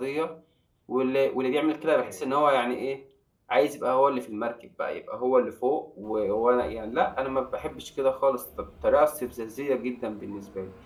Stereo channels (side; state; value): both; identical; correlation 1.00